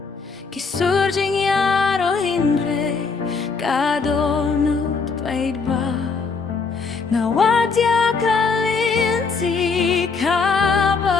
Kisurging yaro hindre kadonut paidba Nawadya kalinti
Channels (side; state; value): right; quieter; 4.8 dB